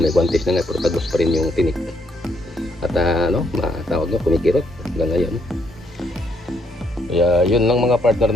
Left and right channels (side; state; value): both; normal; correlation 0.73